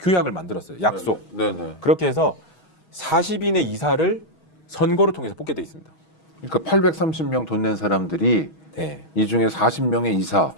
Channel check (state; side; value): late; right; 6.3 ms